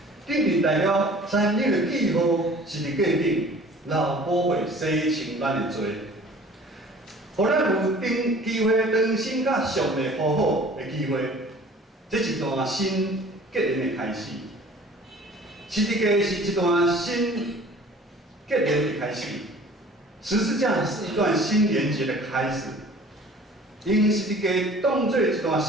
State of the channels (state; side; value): normal; both; correlation 0.48